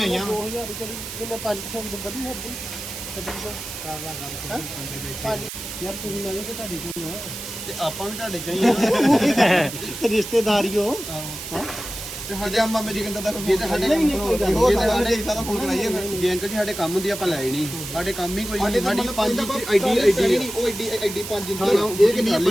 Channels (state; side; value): noise; right; hiss, 9 dB below the sound